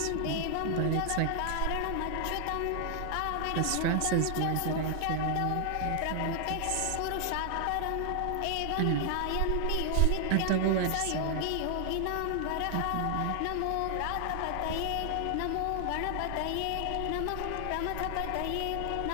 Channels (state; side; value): different; both; correlation 0.00